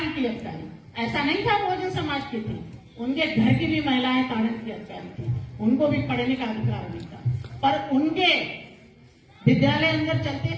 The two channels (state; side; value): identical; both; correlation 1.00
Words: की अधिकारी ऐसा नहीं था बहुजन समाज की थी, उनके घर की भी महिलाएं तारण की अधिकारी थी, उनको भी पढ़ने का अधिकार नहीं था। पर उनके विद्यालय अंदर चलते